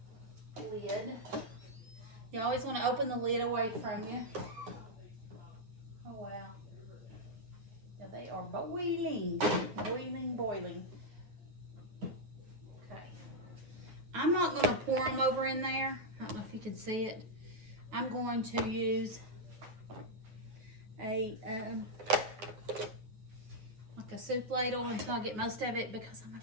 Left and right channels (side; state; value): left; late; 9.3 ms